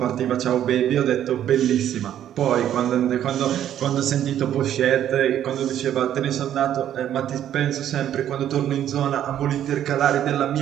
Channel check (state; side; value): quieter; left; 10.9 dB